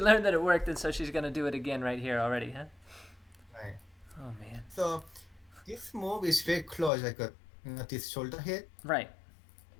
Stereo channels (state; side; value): drops out; right; at 6.9 s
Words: that it worked, and so she's gonna do it again right here already, huh? Right. Oh man. So this move is very close, like this shoulder hit. Right.